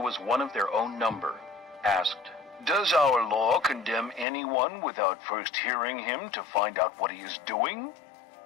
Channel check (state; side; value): drops out; right; at 4.2 s